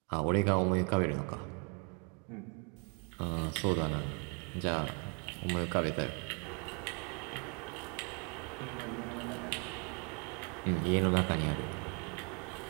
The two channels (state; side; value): quieter; left; 36.7 dB